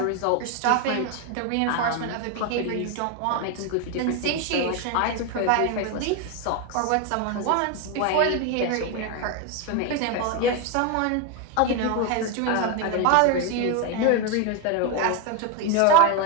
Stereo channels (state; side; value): different; both; correlation 0.02